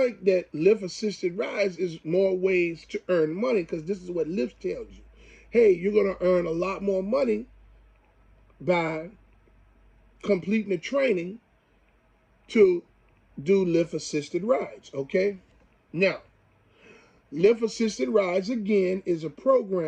that Lyft assisted rides is more ways to earn money because this is what Lyft tells you. Hey, you're going to earn a lot more money by completing the training to do Lyft assisted rides, okay? Now, Lyft assisted rides, again, is a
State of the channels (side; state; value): both; identical; correlation 1.00